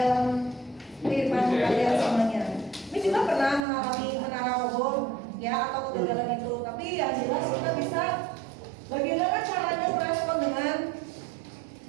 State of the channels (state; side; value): drops out; left; at 3.7 s